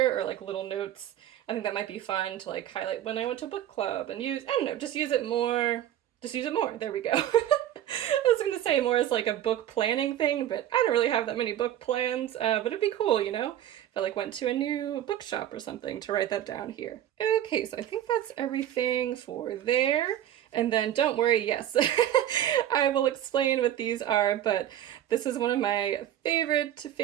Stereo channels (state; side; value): quieter; left; 11.7 dB